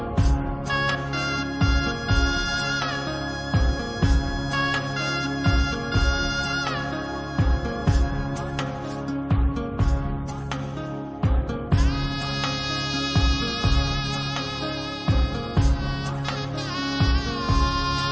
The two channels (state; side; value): identical; both; correlation 1.00